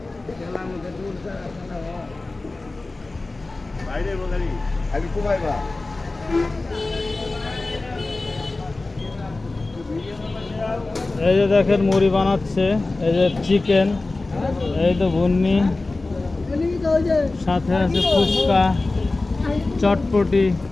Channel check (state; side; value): quieter; right; 3.2 dB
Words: খেলার মধ্যে ঢুলছে বাইরে বগারি আমি কুমাইবা। এই যে দেখেন মুড়ি বানাচ্ছে, এই যে চিকেন, এই তো ভুন্নি, সাথে আছে ফুচকা, চটপটি।